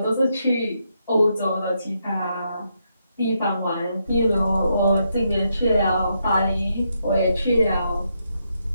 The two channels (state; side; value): inverted; both; correlation -0.80